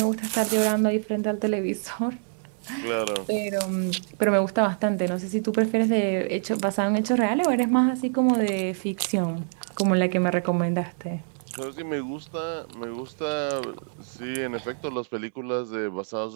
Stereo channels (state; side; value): silent; left; digital silence